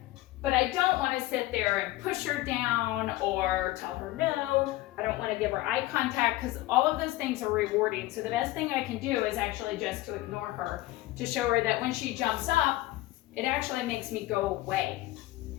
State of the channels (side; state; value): right; quieter; 17.5 dB